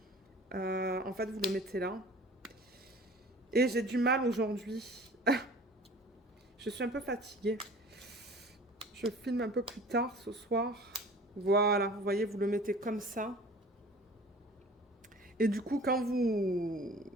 en fait, vous le mettez là. Et j'ai du mal aujourd'hui. Je suis un peu fatiguée. Je filme un peu plus tard ce soir. Voilà, vous voyez, vous le mettez comme ça. Et du coup, quand vous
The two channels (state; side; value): normal; both; correlation 0.44